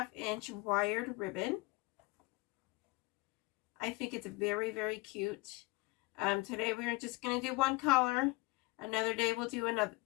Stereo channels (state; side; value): quieter; right; 23.9 dB